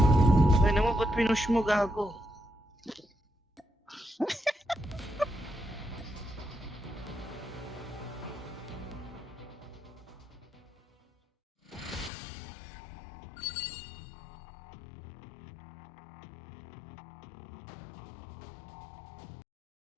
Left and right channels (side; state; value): right; drops out; at 12.1 s